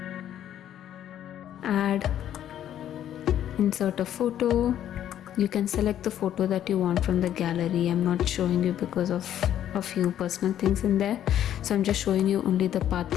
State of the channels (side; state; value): right; quieter; 11.0 dB